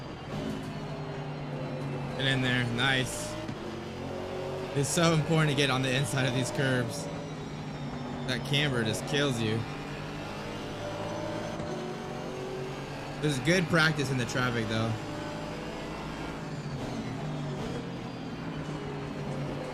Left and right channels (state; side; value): identical; both; correlation 1.00